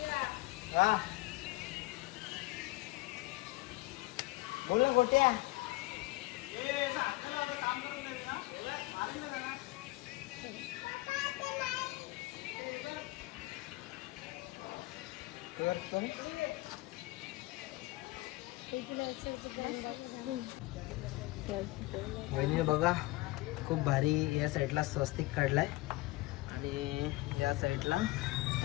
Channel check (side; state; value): right; quieter; 20.3 dB